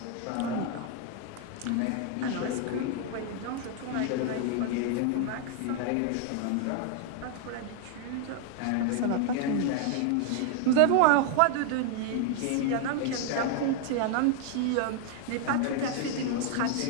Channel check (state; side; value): different; both; correlation 0.00